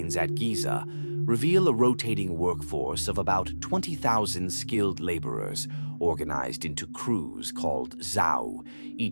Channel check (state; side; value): inverted; both; correlation -1.00